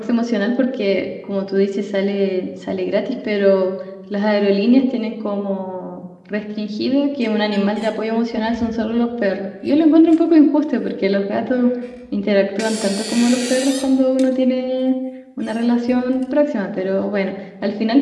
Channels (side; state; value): both; identical; correlation 1.00